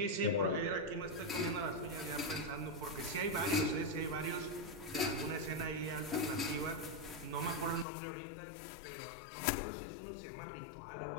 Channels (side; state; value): right; drops out; at 7.9 s